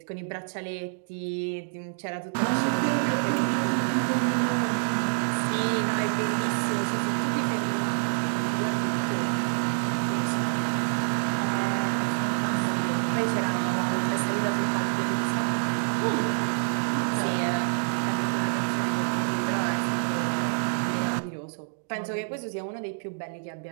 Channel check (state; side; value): silent; left; digital silence